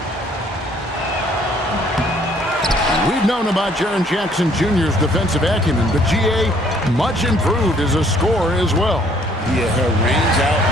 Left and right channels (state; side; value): normal; both; correlation 0.61